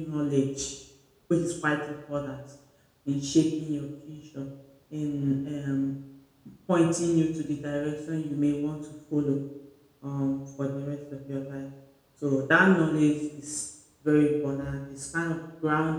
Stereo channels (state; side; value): identical; both; correlation 1.00